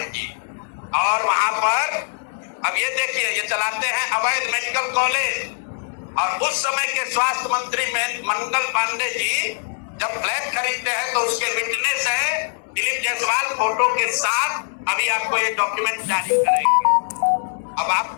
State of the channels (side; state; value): right; silent; 64 dB below the other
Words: जी। और वहां पर अब ये देखिए, ये चलाते हैं अवैध मेडिकल कॉलेज। और उस समय के स्वास्थ्य मंत्री मंगल पांडे जी जब फ्लैट खरीदते हैं तो उसके विटनेस है दिलीप जायसवाल फोटो के साथ। अभी आपको ये डॉक्यूमेंट जारी करेंगे। अब